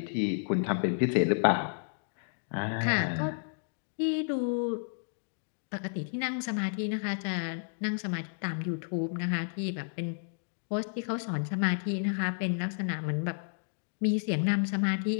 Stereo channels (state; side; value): silent; right; digital silence